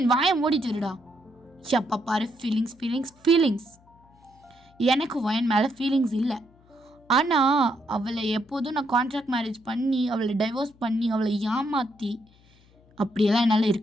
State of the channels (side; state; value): left; noise; hum, 29 dB below the sound